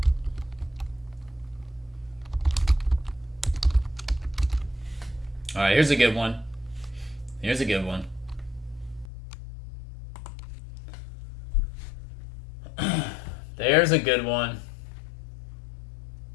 All right, here's a good one. Here's a good one. There's a good one.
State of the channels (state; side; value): drops out; right; at 9.1 s